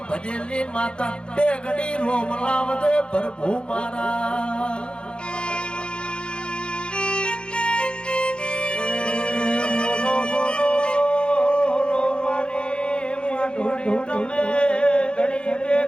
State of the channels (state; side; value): late; right; 0.054 ms